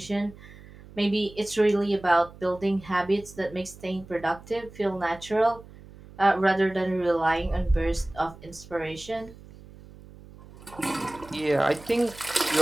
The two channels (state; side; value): noise; right; hum, 19 dB below the sound